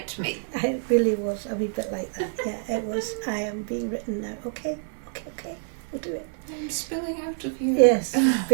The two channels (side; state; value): left; silent; digital silence